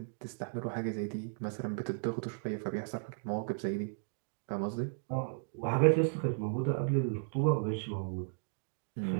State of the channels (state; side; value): silent; left; digital silence